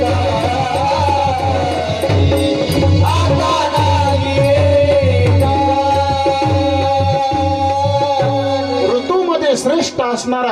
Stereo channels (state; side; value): identical; both; correlation 1.00